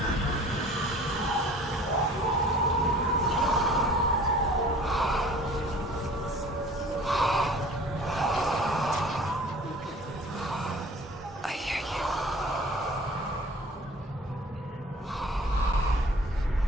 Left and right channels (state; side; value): normal; both; correlation 0.48